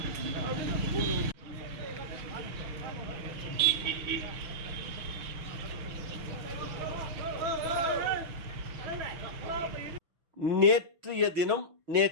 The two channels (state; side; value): late; left; 6.2 ms